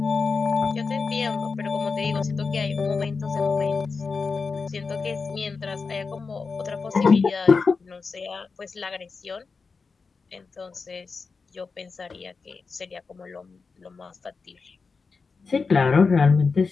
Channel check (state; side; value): quieter; right; 4.7 dB